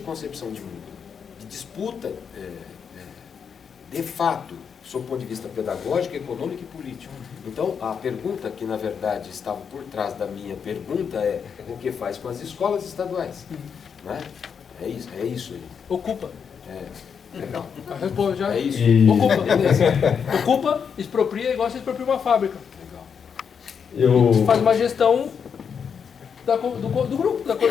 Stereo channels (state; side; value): quieter; right; 6.8 dB